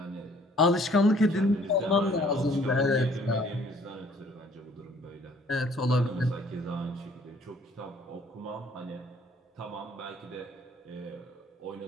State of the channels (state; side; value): normal; both; correlation 0.59